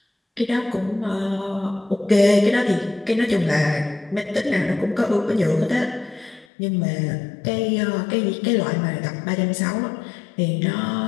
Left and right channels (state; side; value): drops out; right; at 6.5 s